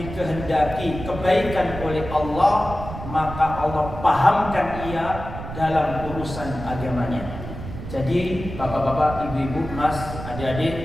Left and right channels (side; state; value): right; noise; rumble, 10 dB below the sound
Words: kebaikan oleh Allah, maka Allah pahamkan ia dalam urusan agamanya. Jadi bapak-bapak, ibu-ibu, mas,